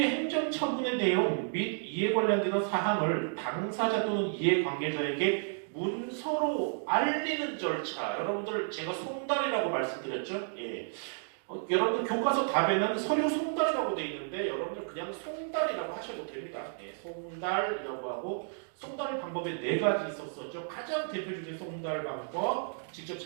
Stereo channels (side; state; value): left; silent; digital silence